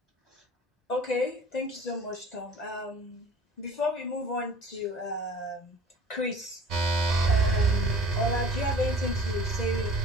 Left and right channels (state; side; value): normal; both; correlation 0.46